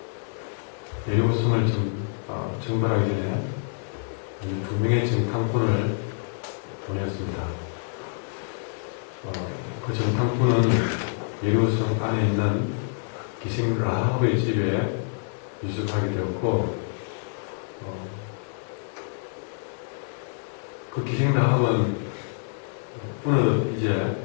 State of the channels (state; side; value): silent; right; 59 dB below the other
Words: 여리고성을 정벌하기 전에 먼저 2명의 정탐꾼을 보냈습니다. 그 정탐꾼은 여리고성 안에 있는 기생 라합의 집에 유숙하게 되었고, 그 기생 라합은 어느덧